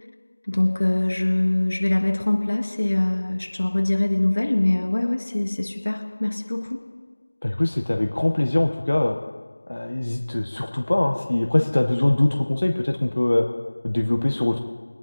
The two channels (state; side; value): inverted; both; correlation -1.00